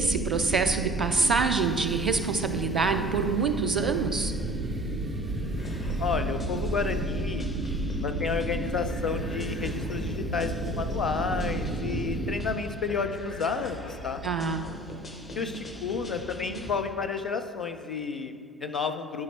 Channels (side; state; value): both; normal; correlation 0.45